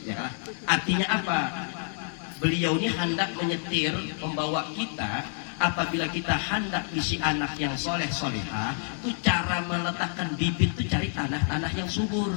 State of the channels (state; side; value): silent; right; 59 dB below the other